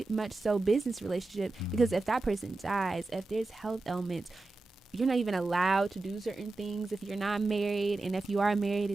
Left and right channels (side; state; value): left; quieter; 3.2 dB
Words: much so business relationship, because if that person dies, if there's health ailments, you're not even allowed to do certain things if you're not married, and if you are married,